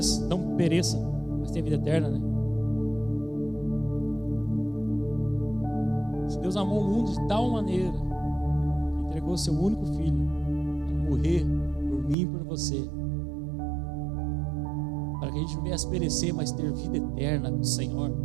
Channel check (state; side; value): drops out; left; at 12.2 s